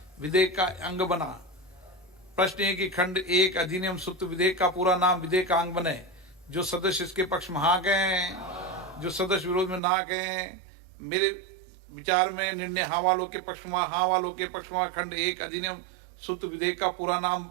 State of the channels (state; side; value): drops out; left; at 9.8 s